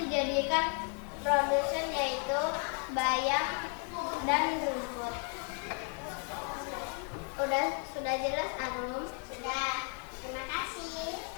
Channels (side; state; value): right; quieter; 38.4 dB